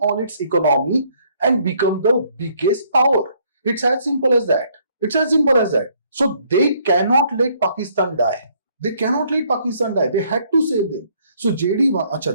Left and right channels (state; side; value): inverted; both; correlation -0.66